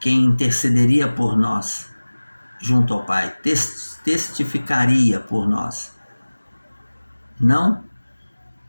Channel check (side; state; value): both; inverted; correlation -1.00